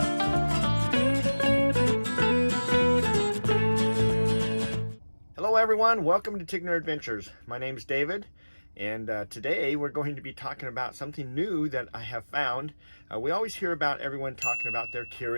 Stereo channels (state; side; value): inverted; both; correlation -1.00